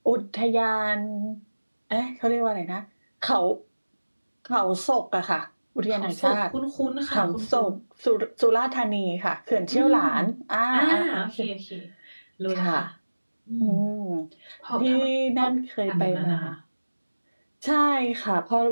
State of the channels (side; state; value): both; inverted; correlation -1.00